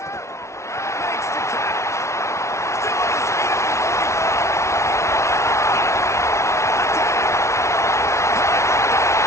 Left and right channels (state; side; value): late; right; 0.13 ms